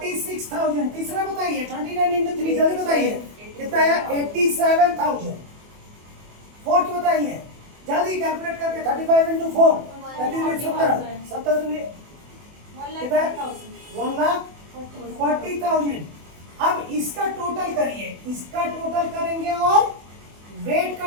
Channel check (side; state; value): left; late; 24 ms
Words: तीसरा बताइए, 29 इंटू 3, जल्दी बताइए, कितना है 87,000। फोर्थ बताइए, जल्दी कैलकुलेट करके, 35 इंटू 4, 70 कितना है 1,40,000। अब इसका टोटल करिए, इसका टोटल करेंगे और वेट का